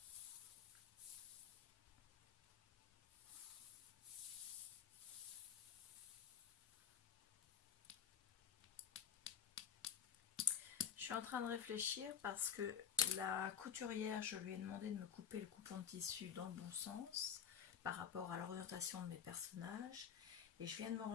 Je suis en train de réfléchir parce que la couturière, je lui ai demandé de me couper le coupon de tissu dans le bon sens par rapport à l'orientation de mes personnages. Et je viens de me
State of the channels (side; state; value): right; quieter; 8.5 dB